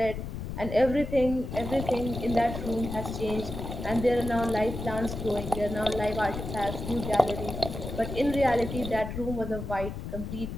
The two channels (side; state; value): left; noise; rumble, 7 dB below the sound